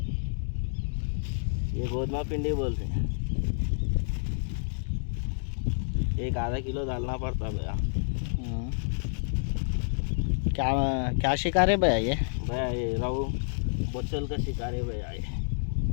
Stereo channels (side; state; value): right; silent; digital silence